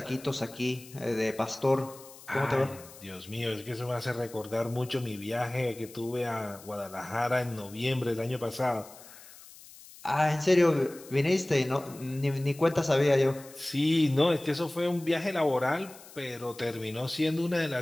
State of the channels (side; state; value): left; noise; hiss, 20 dB below the sound